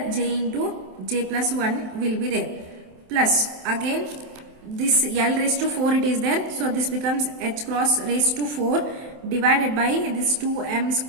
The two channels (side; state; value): left; late; 27 ms